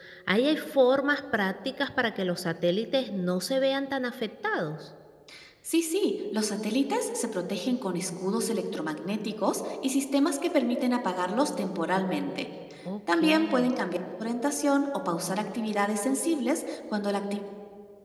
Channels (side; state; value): both; identical; correlation 1.00